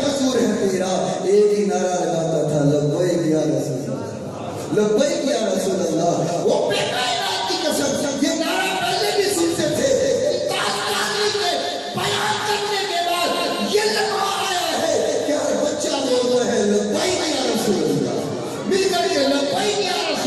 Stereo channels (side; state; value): both; identical; correlation 1.00